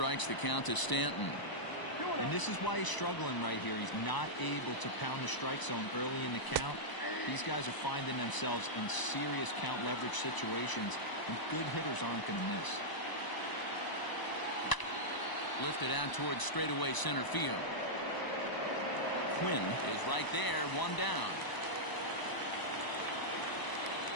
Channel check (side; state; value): right; late; 1.0 ms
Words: The count to Stanton. And this is why he's struggling right here. He's not able to pound the strike zone early in the count. These guys are finding themselves in serious count leverage situations, and good hitters aren't going to miss. Lifted out towards straightaway center field. Quinn is right there, 1 down.